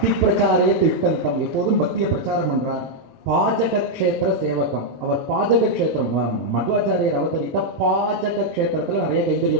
பிரச்சாரே திட்டந்தம், எப்போதும் பக்தியை பிரச்சாரம் பண்றார். பாஜக கஷேத்திர சேவகம். அவர் பாஜக கஷேத்திரம், மத்வாச்சாரியர் அவதரித்த பாஜக கஷேத்திரத்துல நிறைய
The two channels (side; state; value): both; normal; correlation -0.02